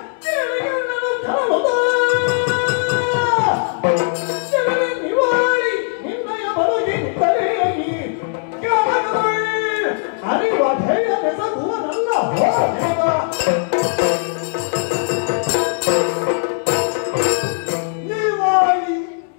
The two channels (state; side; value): silent; right; 63 dB below the other